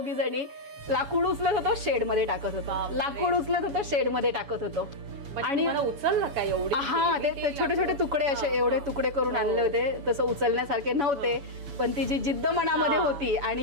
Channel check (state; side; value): late; left; 7.1 ms